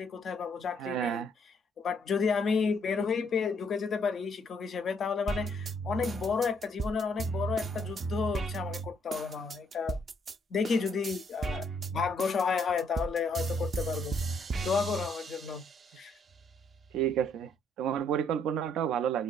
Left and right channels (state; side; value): normal; both; correlation 0.69